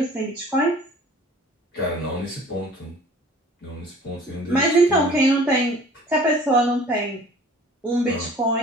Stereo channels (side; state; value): both; normal; correlation 0.49